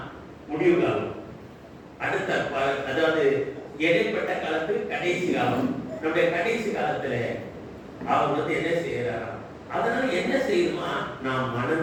முடிவு காலம். அடுத்த அதாவது இடைப்பட்ட காலத்துக்கு கடைசி காலம். நம்முடைய கடைசி காலத்துல அவர் என்ன செய்யறாரா? அதனால என்ன செய்யணுமா? நாம்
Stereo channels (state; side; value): identical; both; correlation 1.00